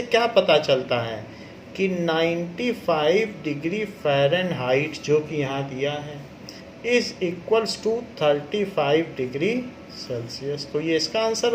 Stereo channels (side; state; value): both; identical; correlation 1.00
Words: क्या पता चलता है कि 95 डिग्री फ़ारेनहाइट जो कि यहाँ दिया है is equals to 35 degree Celsius. तो ये इसका आंसर